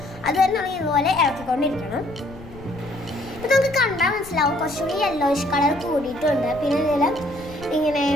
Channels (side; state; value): left; noise; rumble, 17 dB below the sound